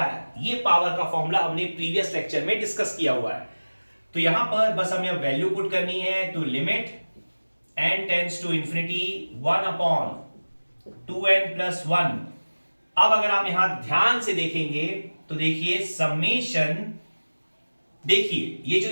ये पावर का फॉर्मूला हमने प्रीवियस लेक्चर में डिस्कस किया हुआ है। तो यहां पर बस हमें अब वैल्यू पुट करनी है। तो limit n tends to infinity 1/2n + 1। अब अगर आप यहां ध्यान से देखेंगे तो देखिए समेशन, देखिए ये जो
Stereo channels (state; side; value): inverted; both; correlation -1.00